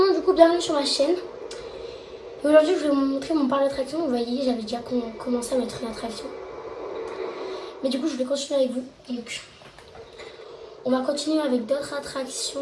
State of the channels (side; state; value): both; identical; correlation 1.00